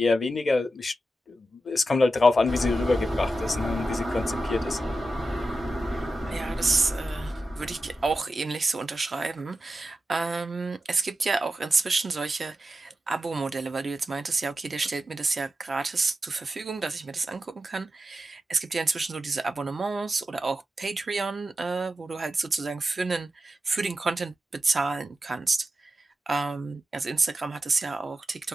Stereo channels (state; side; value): normal; both; correlation 0.90